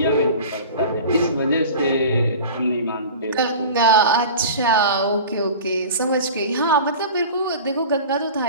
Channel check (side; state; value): both; inverted; correlation -0.37